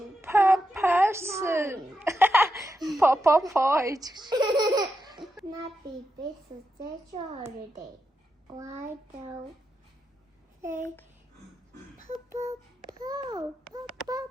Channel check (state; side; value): normal; both; correlation 0.86